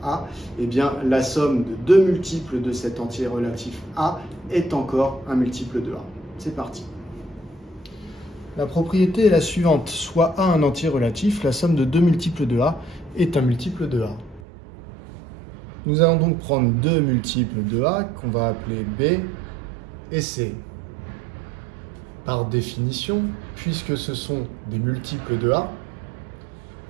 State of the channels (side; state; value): left; drops out; at 14.5 s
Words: A, eh bien, la somme de deux multiples de cet entier relatif A est encore un multiple de A. C'est parti. La propriété est la suivante, soit A un entier relatif, la somme de deux multiples de A est un multiple de A. Nous allons donc prendre deux multiples de A qu'on va appeler B et C. Par définition, puisque ce sont des multiples de A,